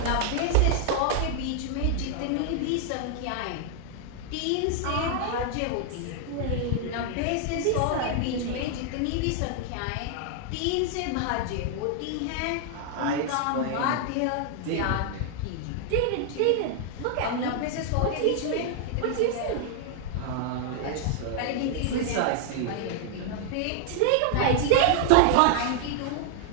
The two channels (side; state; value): both; different; correlation 0.00